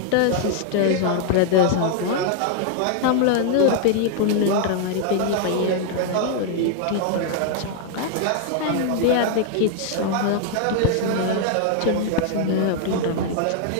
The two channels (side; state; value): both; different; correlation 0.00